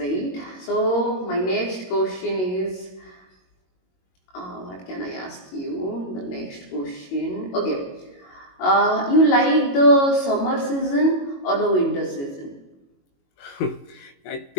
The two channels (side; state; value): right; late; 22 ms